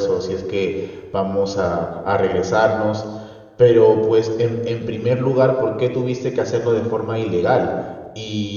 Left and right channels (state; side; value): identical; both; correlation 1.00